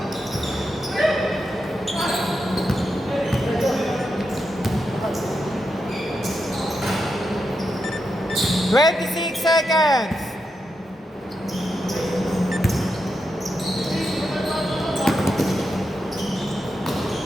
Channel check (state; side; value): normal; both; correlation 0.86